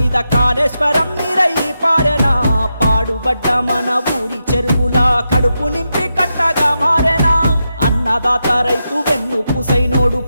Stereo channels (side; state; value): both; inverted; correlation -0.87